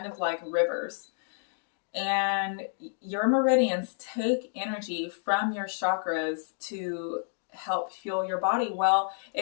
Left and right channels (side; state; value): right; silent; digital silence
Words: of like rivers. And your meridians take energy from your chakras to help fuel your body. Well,